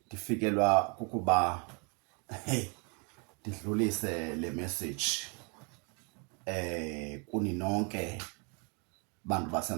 ndifikelwa kukuba ndidlulise le message kuni nonke bantu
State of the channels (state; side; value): quieter; left; 34.4 dB